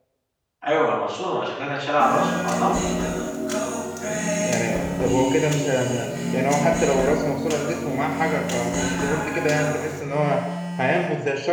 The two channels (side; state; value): both; identical; correlation 1.00